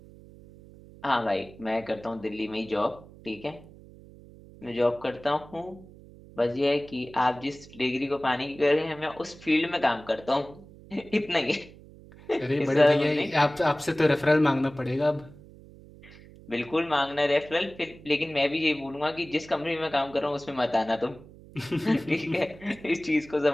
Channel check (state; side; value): noise; right; hum, 20 dB below the sound